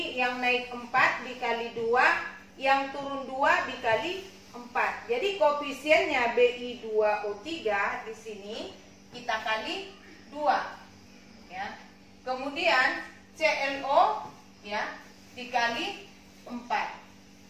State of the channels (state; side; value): identical; both; correlation 1.00